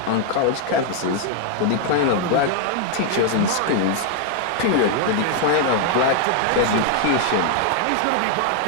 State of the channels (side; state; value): both; different; correlation 0.00